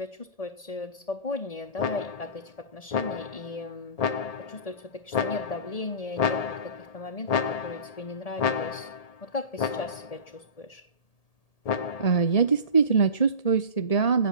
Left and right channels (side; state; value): right; late; 1.8 ms